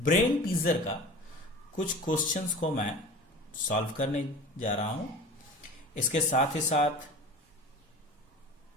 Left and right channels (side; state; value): both; normal; correlation 0.38